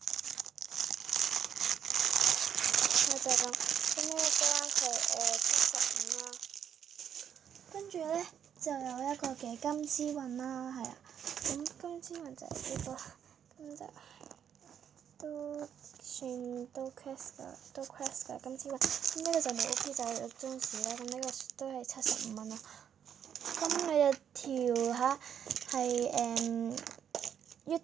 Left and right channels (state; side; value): quieter; left; 8.6 dB